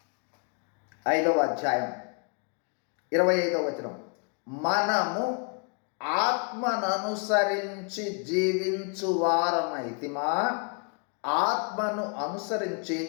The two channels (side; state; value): right; quieter; 38.0 dB